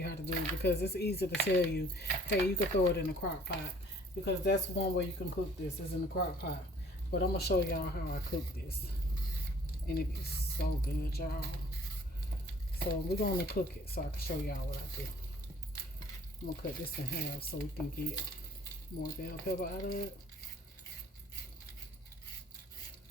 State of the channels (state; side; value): normal; both; correlation 0.54